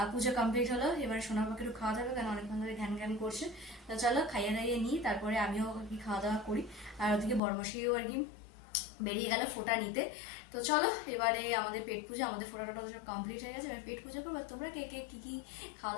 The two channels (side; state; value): right; drops out; at 7.4 s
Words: পুজো কমপ্লিট হলো, এবার সোনার পাখি একটু খাওয়া দাওয়া, কারণ অনেকক্ষণ ধরে ঘ্যান ঘ্যান করছে। তো চলো খাইয়ে দাইয়ে নিই, তারপরে আমিও আর কি খাওয়া দাওয়া করি। আর ওদিকে বড়মশাইও আর কি বেরিয়ে গেল ফোঁটা নিতে। তো চলো এবারে আমাদের পেট পুজো, আমাদের ফোঁটা টোটা সব কমপ্লিট হয়ে গেছে, এবার পেট পুজো করবো। তোমরা কে কে কি কি খাওয়া